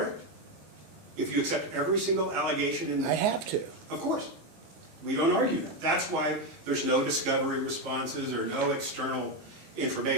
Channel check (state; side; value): late; left; 19 ms